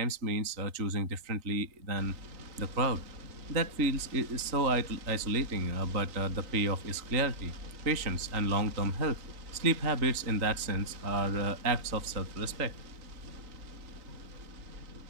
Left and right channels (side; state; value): left; late; 3.8 ms